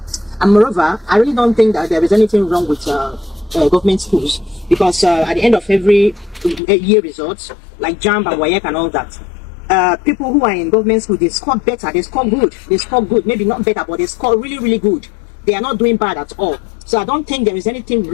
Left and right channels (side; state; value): right; drops out; at 6.6 s